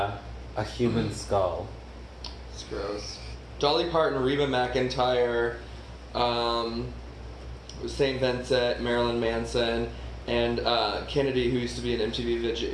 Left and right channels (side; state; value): both; identical; correlation 1.00